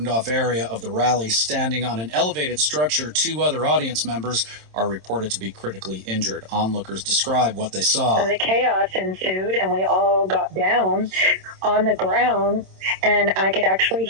area of the rally, standing on an elevated structure. Two other audience members are reported to be critically injured. Onlookers describe what they saw. The chaos ensued, and we all got down on the ground, and I could actually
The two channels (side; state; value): left; late; 27 ms